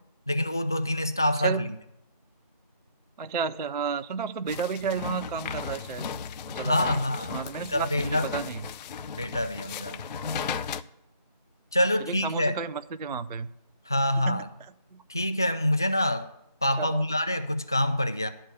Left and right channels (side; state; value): both; inverted; correlation -0.69